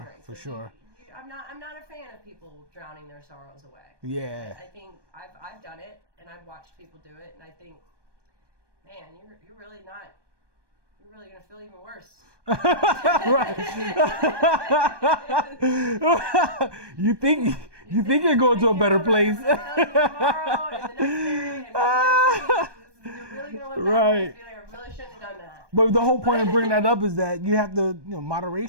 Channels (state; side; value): late; left; 1.2 ms